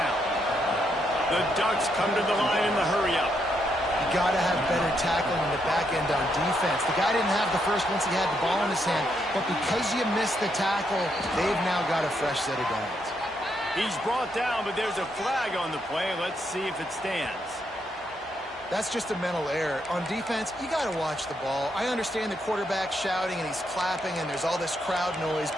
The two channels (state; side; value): normal; both; correlation 0.78